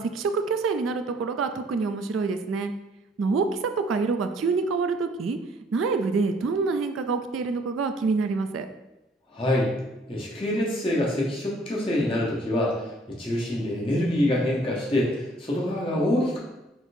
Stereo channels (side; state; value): both; normal; correlation 0.60